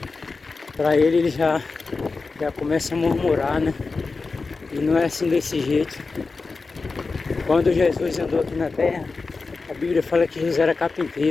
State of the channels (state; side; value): quieter; right; 4.1 dB